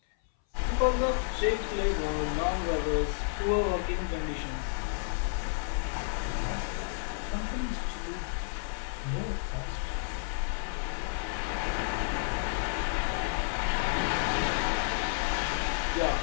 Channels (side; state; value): right; silent; 57 dB below the other